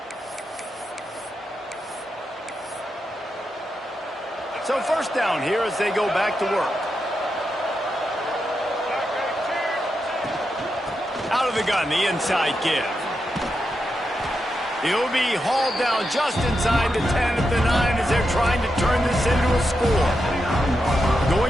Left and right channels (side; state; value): both; normal; correlation 0.86